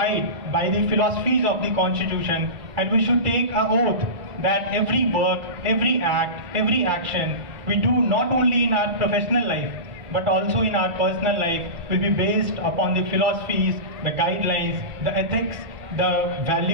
by the philosophies of the constitution, and we should take an oath that every work, every act, every action we do not only in our professional life but also in our personal life will be based upon the philosophies, the guidelines, the ethics, the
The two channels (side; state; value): left; late; 1.4 ms